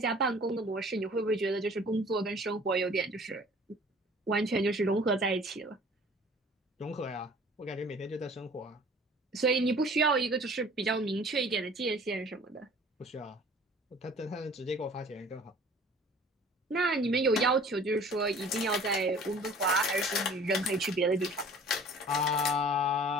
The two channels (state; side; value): normal; both; correlation 0.49